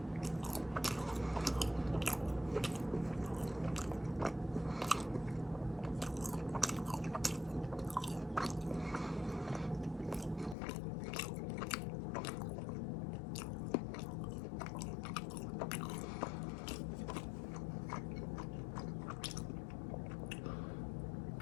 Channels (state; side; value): drops out; right; at 10.6 s